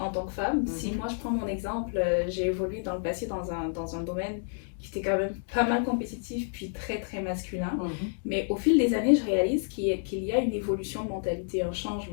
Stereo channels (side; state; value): right; silent; digital silence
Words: tant que femme. Si moi je prends mon exemple, j'ai évolué dans le passé dans un domaine qui était quand même pas mal compétitif, puis très très masculin. Mais au fil des années, je réalise qu'il y a une évolution de mentalité, un